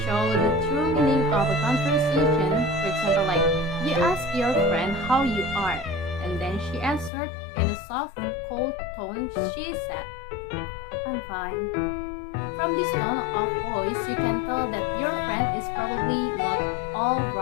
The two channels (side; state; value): right; drops out; at 7.1 s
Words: show the true meaning of a conversation. For example, like you ask your friend how you are, and then she answered in a soft, cold tone. She said, "I'm fine." From this tone of voice, you can tell that your friend is probably not all